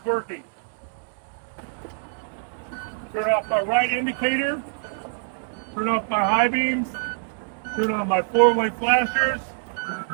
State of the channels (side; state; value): left; silent; digital silence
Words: working. Turn off my right indicator. Turn off my high beams. Turn on my 4-way flashers.